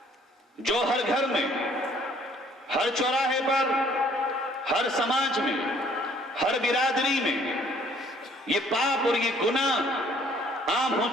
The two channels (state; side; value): normal; both; correlation 0.60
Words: جو ہر گھر میں، ہر چوراہے پر، ہر سماج میں، ہر برادری میں یہ پاپ اور یہ گناہ عام ہو